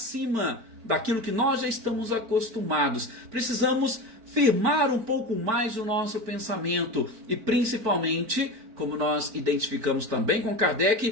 daquilo que nós já estamos acostumados. Precisamos firmar um pouco mais o nosso pensamento e, principalmente, como nós identificamos também com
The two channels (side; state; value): left; late; 4.5 ms